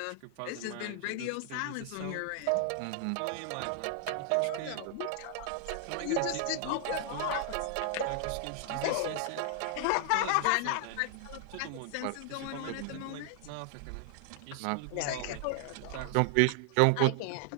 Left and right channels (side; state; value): both; different; correlation 0.00